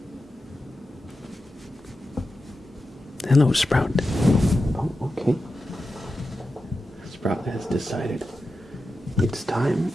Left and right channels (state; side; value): normal; both; correlation 0.91